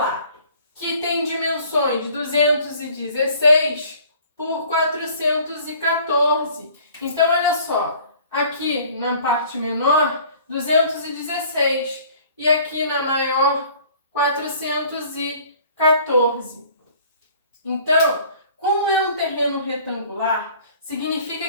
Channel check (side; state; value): both; inverted; correlation -0.52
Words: Que tem dimensões 216 por 414. Então, olha só. Aqui na parte menor, 216. E aqui na maior, 414. Então, como é um terreno retangular,